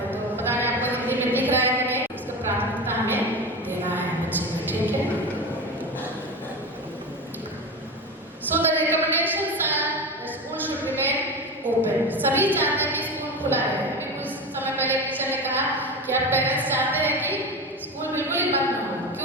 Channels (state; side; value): normal; both; correlation 0.25